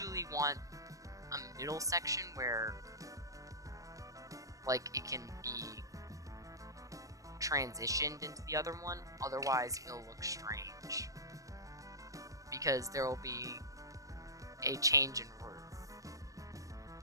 want a middle section where, like, it can be transitioned into the other one. Otherwise, it'll look strange, because there will be a change in roof.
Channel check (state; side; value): late; left; 0.16 ms